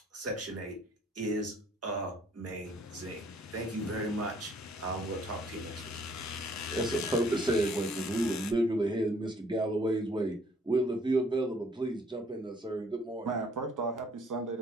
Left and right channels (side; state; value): both; normal; correlation 0.62